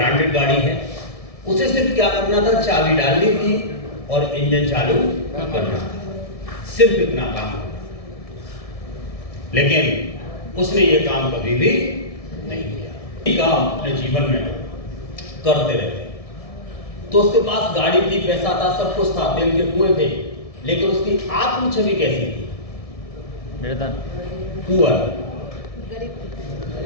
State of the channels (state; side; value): late; right; 1.7 ms